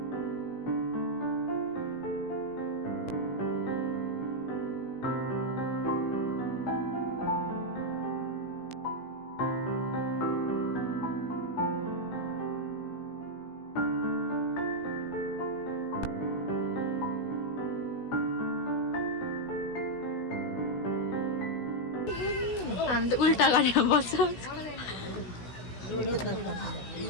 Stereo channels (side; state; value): right; late; 16 ms